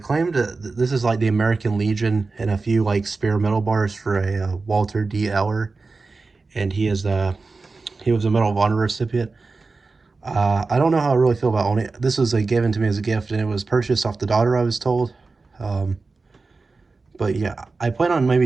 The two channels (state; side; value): quieter; left; 3.9 dB